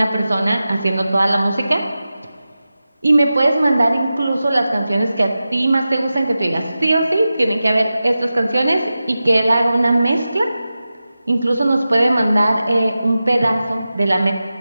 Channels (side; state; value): both; inverted; correlation -0.94